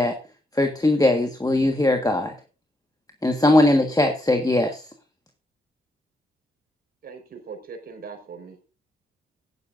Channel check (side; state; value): both; normal; correlation 0.79